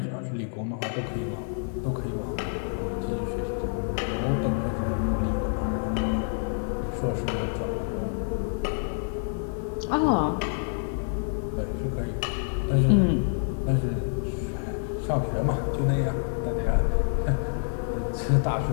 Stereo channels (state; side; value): silent; right; digital silence